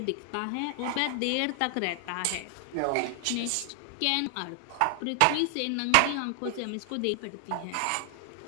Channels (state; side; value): different; both; correlation 0.00